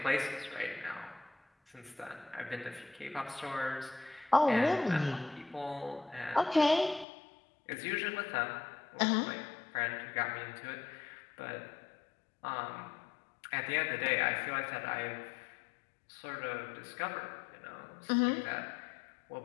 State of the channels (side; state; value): right; drops out; at 7.1 s